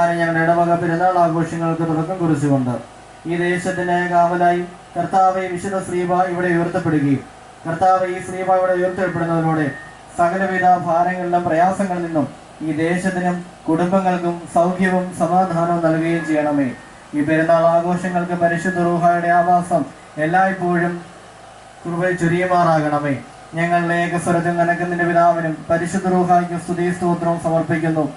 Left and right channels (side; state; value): both; identical; correlation 1.00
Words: ഞങ്ങളുടെ ഇടവക പെരുന്നാൾ ആഘോഷങ്ങൾക്ക് തുടക്കം കുറിച്ചുകൊണ്ട് ഈ ദേശത്തിന്റെ കാവലായി കർത്താവെ വിശുദ്ധ ശ്രീബ ഇവിടെ ഉയർത്തപ്പെടുകയും കർത്താവ് ഈ ശ്രീബ ഇവിടെ ഉയർത്തപ്പെടുന്നതിലൂടെ സകലവിധ ഭാരങ്ങളിലും പ്രയാസങ്ങളിൽ നിന്നും ഈ ദേശത്തിനും കുടുംബങ്ങൾക്കും സൗഖ്യവും സമാധാനവും നൽകുകയും ചെയ്യണമേ. ഈ പെരുന്നാൾ ആഘോഷങ്ങൾക്ക് പരിശുദ്ധ റൂഹായുടെ ആവാസം എല്ലായ്പ്പോഴും കൃപ ചൊരിയുമാറാകണമേ. ഞങ്ങളുടെ ഏകസ്വരത്തിൽ നനക്കുന്നതിന്റെ പിതാവിനും പരിശുദ്ധ റൂഹായ്ക്ക് സ്തുതി സ്തോത്രവും സമർപ്പിക്കുന്നു.